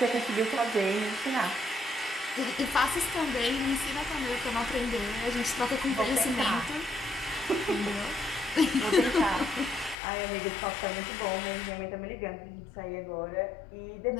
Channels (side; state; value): right; drops out; at 10.0 s